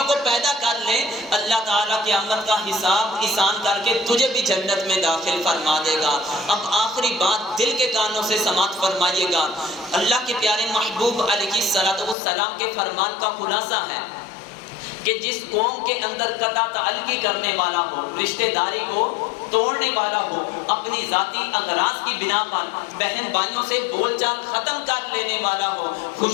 کو پیدا کر لے، اللہ تعالیٰ قیامت کا حساب آسان کر کے تجھے بھی جنت میں داخل فرما دے گا۔ اب آخری بات دل کے کانوں سے سماعت فرمائیے گا۔ اللہ کے پیارے محبوب علیہ السلام کے فرمان کا خلاصہ ہے کہ جس قوم کے اندر قطع تعلقی کرنے والا ہو، رشتہ داری کو توڑنے والا ہو، اپنی ذاتی اغراض کی بنا پر بہن بھائیوں سے بول چال ختم کر لینے والا ہو،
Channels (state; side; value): drops out; right; at 12.2 s